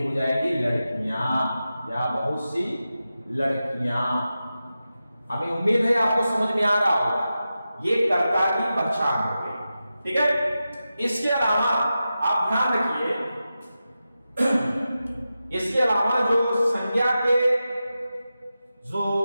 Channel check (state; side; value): inverted; both; correlation -0.92